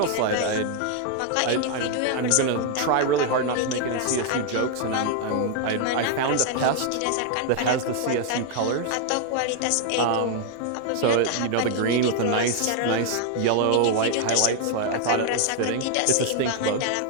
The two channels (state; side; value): different; both; correlation 0.00